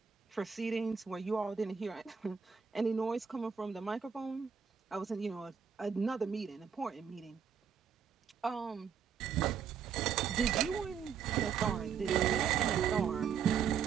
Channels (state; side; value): quieter; left; 7.0 dB